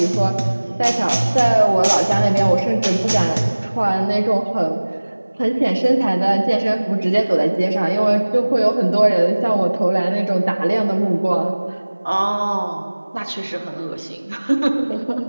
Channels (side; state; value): both; inverted; correlation -1.00